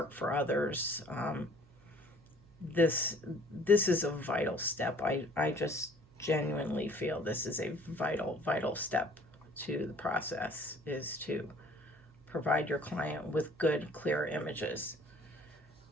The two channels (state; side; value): noise; right; hum, 26 dB below the sound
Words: for others. This is a vital step. I just genuinely feel this is a vital step to the process, is to provide your client with good, clear images.